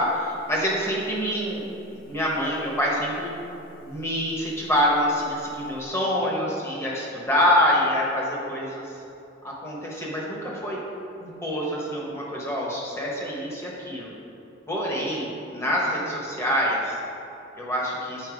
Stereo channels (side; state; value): both; normal; correlation 0.21